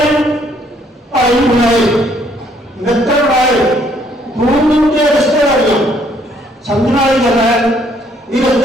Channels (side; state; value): both; normal; correlation 0.66